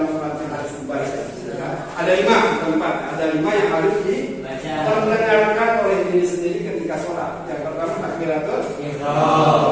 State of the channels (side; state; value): both; identical; correlation 1.00